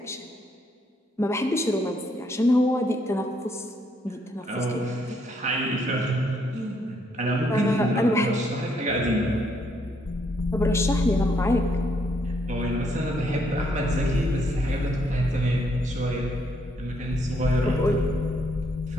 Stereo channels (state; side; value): normal; both; correlation 0.72